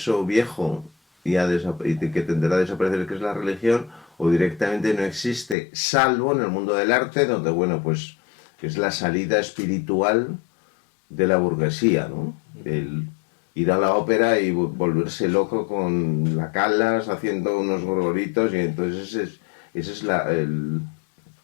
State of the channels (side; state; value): right; drops out; at 5.6 s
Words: viejo y que tenderá a desaparecer, que es la religión, o directamente no existe, salvo en el mundo del arte, donde, bueno, pues es la salida espiritual de la burguesía, ¿no? El ir a la ópera y volverse loco con la Callas haciendo unos gorgoritos, y entonces ese es